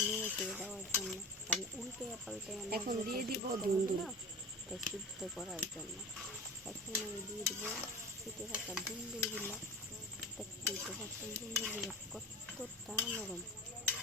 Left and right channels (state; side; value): normal; both; correlation 0.31